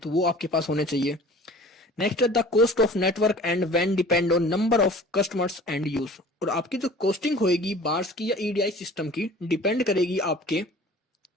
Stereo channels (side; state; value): both; normal; correlation 0.45